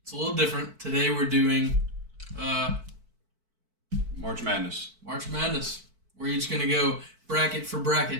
it's a little different. Today we're doing March Madness. March Madness. We're each gonna go bracket for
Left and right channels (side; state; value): left; late; 4.5 ms